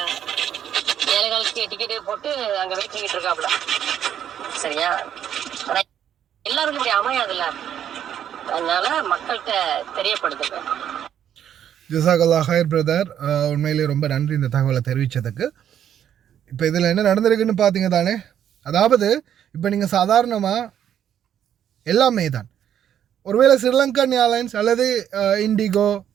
7 காலுக்கு டிக்கெட்டு போட்டு அங்க வெயிட் பண்ணிட்டு இருக்காப்ல சரியா. ஆனா எல்லாருக்கும் இப்படி அமையாதுல்ல, அதனால மக்கள்கிட்ட தெரியப்படுத்துங்க. ஜஸாகல்லா ஹைர் பிரதர், உண்மையிலேயே ரொம்ப நன்றி இந்த தகவலை தெரிவித்ததுக்கு. இப்போ இதில் என்ன நடந்திருக்குன்னு பார்த்தீங்க தானே. அதாவது இப்போ நீங்கள் சாதாரணமாக எல்லாமே தான், ஒருவேளை ஸ்ரீலங்கன் ஏர்லைன்ஸ் அல்லது இண்டிகோ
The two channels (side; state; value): left; quieter; 9.8 dB